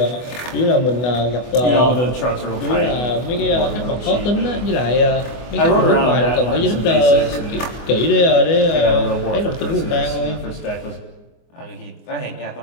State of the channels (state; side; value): late; right; 24 ms